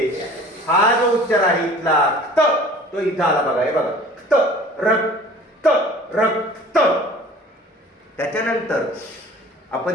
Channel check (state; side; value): normal; both; correlation 0.46